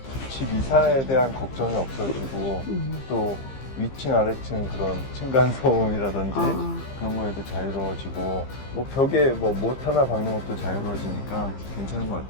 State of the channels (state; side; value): late; right; 15 ms